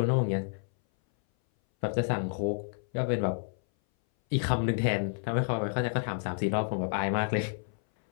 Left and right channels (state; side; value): silent; right; 58 dB below the other